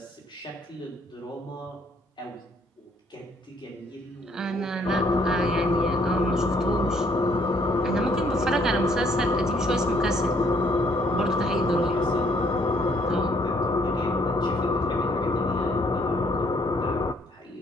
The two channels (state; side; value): normal; both; correlation 0.66